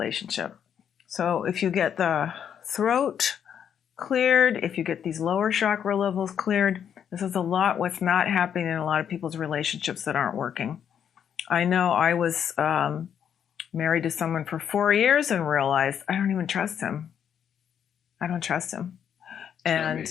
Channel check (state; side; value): quieter; right; 8.6 dB